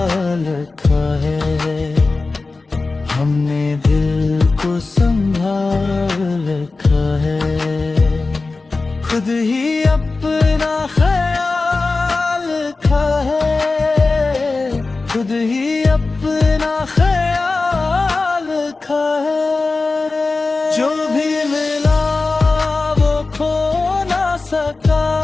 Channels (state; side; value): quieter; right; 3.7 dB